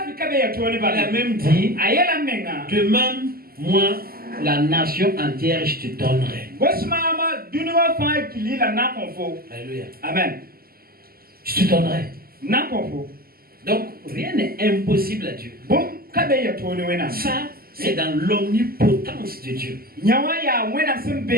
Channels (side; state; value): left; late; 0.43 ms